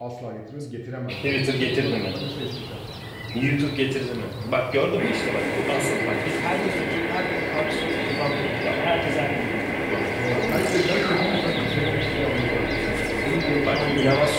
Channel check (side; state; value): both; identical; correlation 1.00